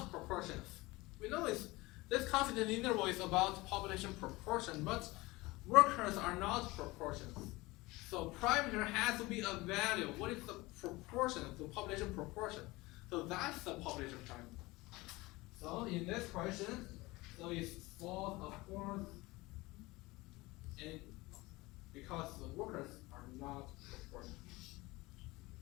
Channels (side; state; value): right; quieter; 21.5 dB